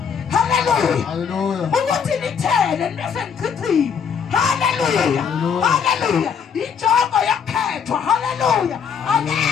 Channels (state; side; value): quieter; right; 7.0 dB